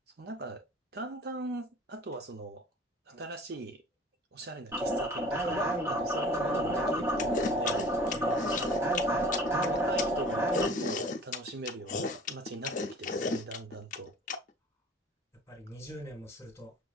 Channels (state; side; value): normal; both; correlation 0.46